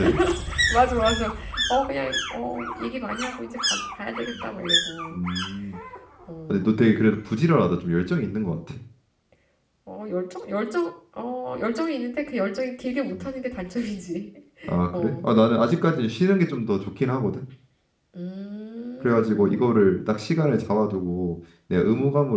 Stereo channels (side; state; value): both; identical; correlation 1.00